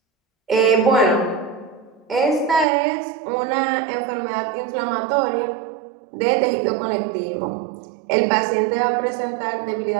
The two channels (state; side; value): drops out; left; at 2.7 s